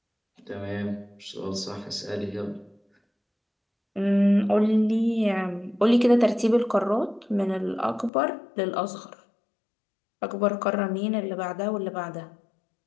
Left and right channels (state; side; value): drops out; right; at 8.1 s